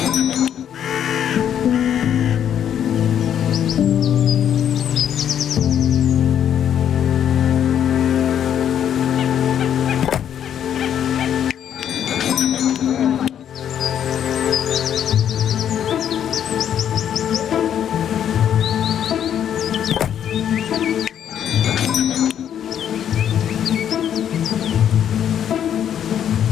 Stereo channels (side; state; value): right; quieter; 9.5 dB